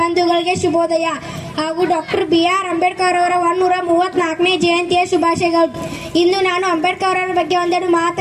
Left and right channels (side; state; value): both; identical; correlation 1.00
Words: ಬಂಧುಗಳಿಗೆ ಶುಭೋದಯ ಹಾಗೂ ಡಾಕ್ಟರ್ BR ಅಂಬೇಡ್ಕರ್ ಅವರ 134ನೇ ಜಯಂತಿಯ ಶುಭಾಶಯಗಳು. ಇಂದು ನಾನು ಅಂಬೇಡ್ಕರ್ ಅವರ ಬಗ್ಗೆ ಒಂದೆರಡು